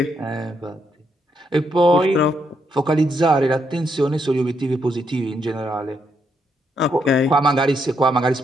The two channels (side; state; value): both; normal; correlation 0.78